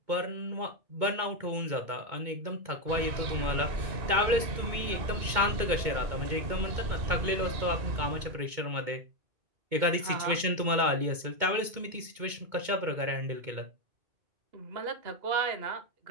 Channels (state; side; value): late; left; 2.2 ms